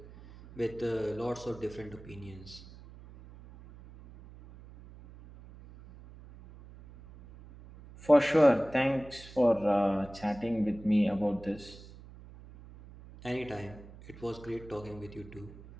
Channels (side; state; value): right; noise; hum, 18 dB below the sound